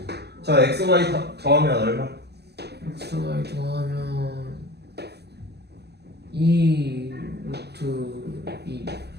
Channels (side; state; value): left; late; 0.48 ms